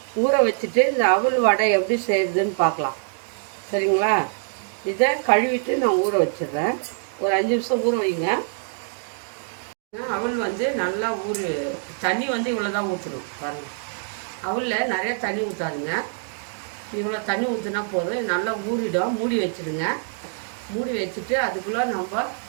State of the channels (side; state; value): left; silent; digital silence